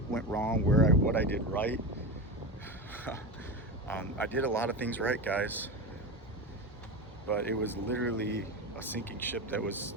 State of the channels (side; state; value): both; normal; correlation 0.22